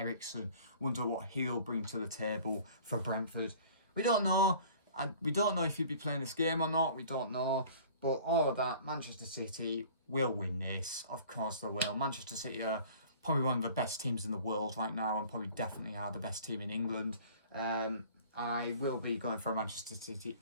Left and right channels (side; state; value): both; inverted; correlation -0.48